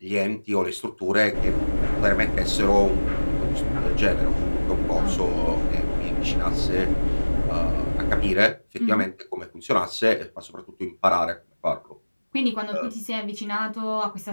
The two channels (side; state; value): both; inverted; correlation -1.00